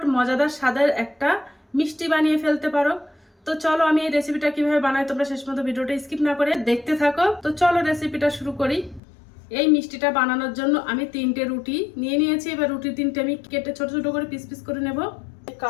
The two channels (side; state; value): right; drops out; at 9.0 s